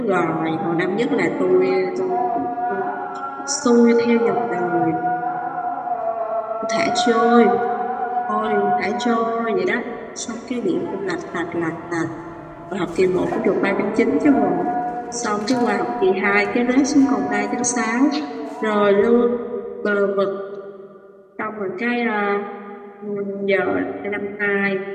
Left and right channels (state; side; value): identical; both; correlation 1.00